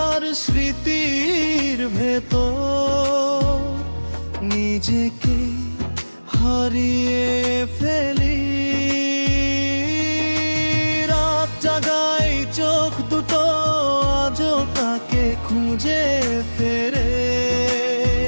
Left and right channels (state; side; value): inverted; both; correlation -1.00